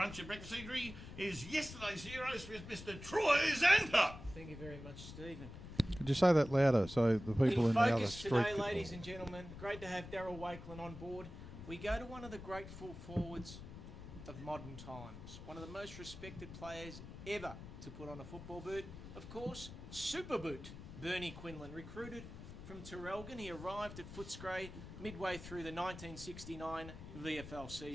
and Breakfast Eatery is yesterday's heroes with Mr. Troy Zantuck. Thank you very much, Stephen. Could you say that louder so the people in the other Focus street today, could- ladies and gentlemen. Great to have Darryl Wakelin on board. We go to one of the great full forwards of modern times. One of the most respected players ever to put on a football boot. Of course, Super Boot. Bernie Quinland, recruited from Terrelgan. He arrived at Footscray midway through the 1969 VFL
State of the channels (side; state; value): left; noise; rumble, 12 dB below the sound